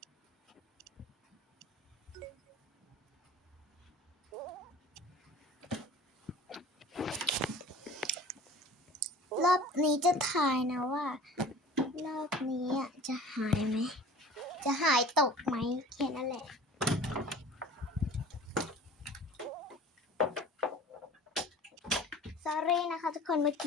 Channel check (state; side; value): normal; both; correlation 0.43